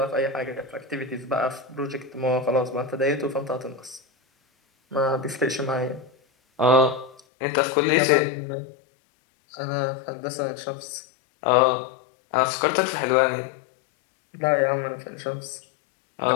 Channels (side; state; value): right; drops out; at 7.2 s